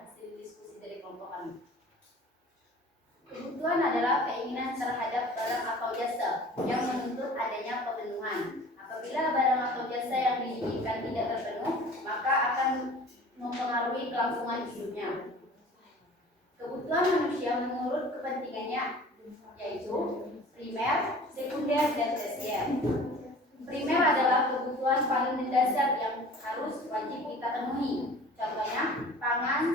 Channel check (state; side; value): normal; both; correlation 0.44